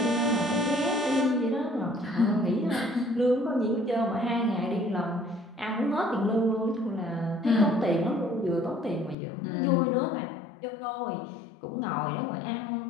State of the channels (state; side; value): drops out; right; at 9.2 s